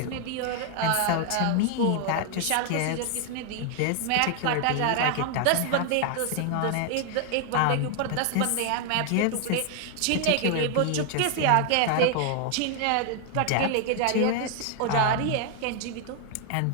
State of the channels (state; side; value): different; both; correlation 0.00